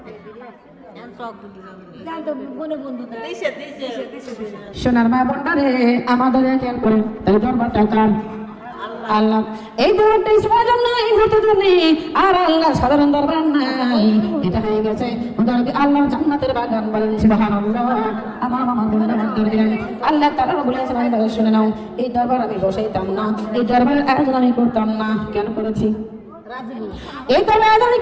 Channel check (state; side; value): identical; both; correlation 1.00